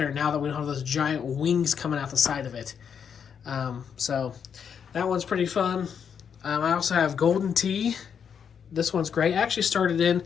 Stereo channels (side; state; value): right; quieter; 7.4 dB